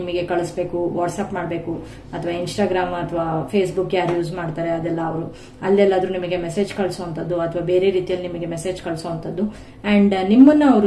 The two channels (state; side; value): identical; both; correlation 1.00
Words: ಕಳಿಸ್ಬೇಕು, ವಾಟ್ಸ್ಆಪ್ ಮಾಡಬೇಕು ಅಥವಾ ಇನ್ಸ್ಟಾಗ್ರಾಮ್ ಅಥವಾ ಫೇಸ್ಬುಕ್ ಯಾರು ಯೂಸ್ ಮಾಡ್ತಾರೆ ಅದೆಲ್ಲ ಅವರು ಅಲ್ಲೆಲ್ಲಾದ್ರೂ ನಿಮಗೆ ಮೆಸೇಜ್ ಕಳಿಸುವಂತದ್ದು ಅಥವಾ ಬೇರೆ ರೀತಿಯಲ್ಲಿ ನಿಮಗೆ ಮೆಸೇಜ್ ಕಳಿಸುವಂತದ್ದು. ಅಂಡ್ ನಿಮ್ಮನ್ನ